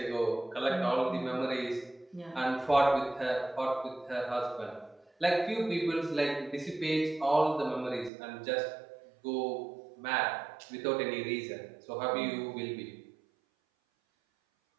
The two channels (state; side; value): drops out; left; at 8.1 s